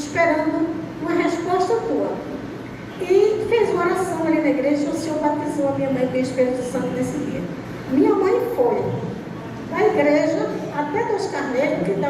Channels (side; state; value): both; identical; correlation 1.00